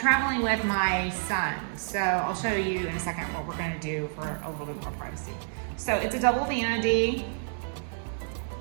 with my son. So I'll show you in a second what we're gonna do for a little bit more privacy. So it's a double vanity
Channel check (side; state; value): left; silent; 59 dB below the other